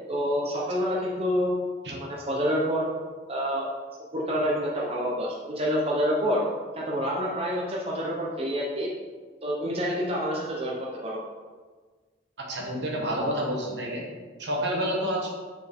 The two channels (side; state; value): both; normal; correlation 0.38